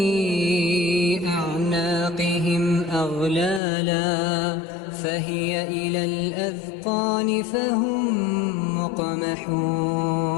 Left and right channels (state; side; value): drops out; right; at 3.6 s